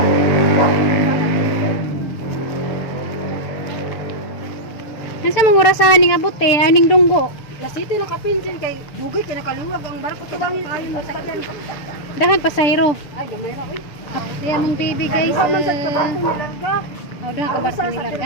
Asa mangurasahan ning abot eh, aning dunggo. Lasiti na kapinsin kay dugay kay nakaluwag ang barko to bangin ayo mo sakyan. Dahan pasahero. Ay gamay ra oy. Diya mong baby guys. Duha man sa barko nilarga. Oh, dahan ka barko nilarga.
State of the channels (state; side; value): late; right; 6.8 ms